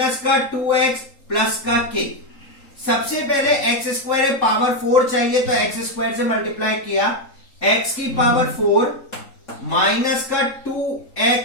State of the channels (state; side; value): late; right; 3.8 ms